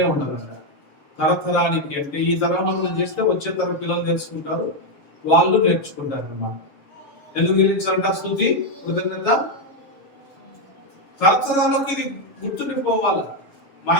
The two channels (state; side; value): late; right; 7.2 ms